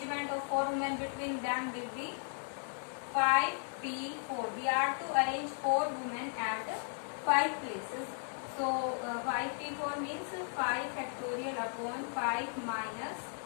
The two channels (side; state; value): right; silent; 54 dB below the other